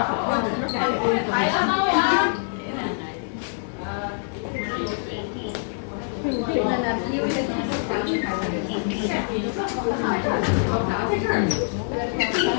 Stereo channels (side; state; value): right; silent; digital silence